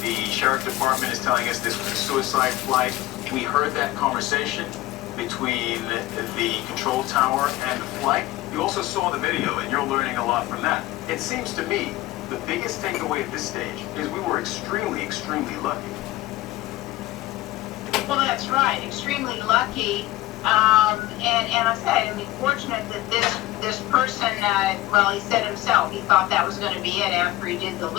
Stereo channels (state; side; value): quieter; right; 17.2 dB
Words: The sheriff department is telling us this was a suicide flight. We heard that conversation between the control tower and the flight. You also saw the video, and you're learning a lot from that. It seems to me the biggest takeaway at this stage is we were extremely, extremely lucky. Well, that's right. Extremely lucky. And I said, I mean, fortunate that this person, well, he said himself, he thought that was going to be it after he did the